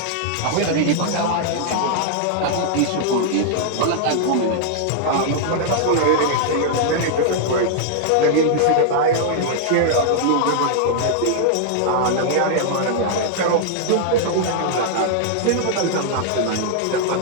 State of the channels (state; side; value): different; both; correlation -0.01